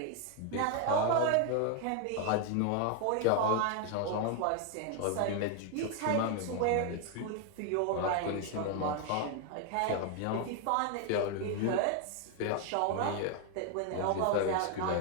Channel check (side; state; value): both; different; correlation 0.01